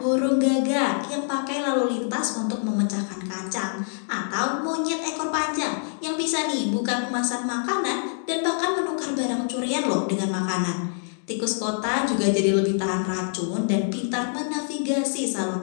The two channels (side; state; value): right; silent; digital silence